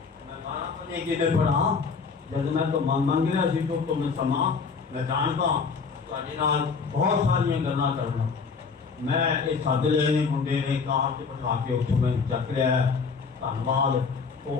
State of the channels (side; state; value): right; quieter; 5.2 dB